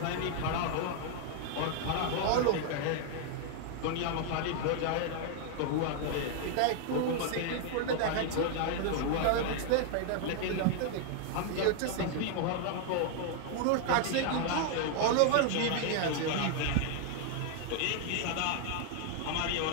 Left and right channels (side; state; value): both; different; correlation 0.00